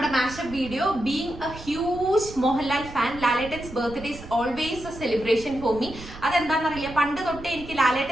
mashup video. Being a huge Mohanlal fan, Lalettan's birthday is always a celebration for me. അതെന്താണെന്നറിയില്ല, പണ്ട് തൊട്ടേ എനിക്ക്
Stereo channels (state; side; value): noise; right; rumble, 15 dB below the sound